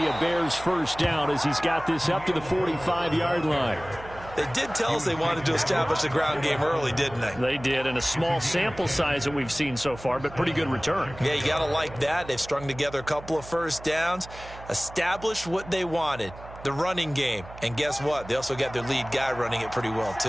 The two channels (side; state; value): right; noise; hum, 16 dB below the sound